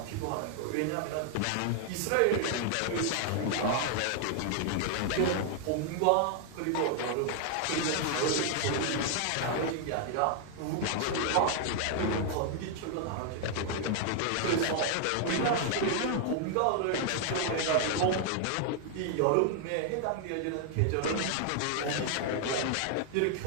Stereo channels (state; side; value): different; both; correlation 0.00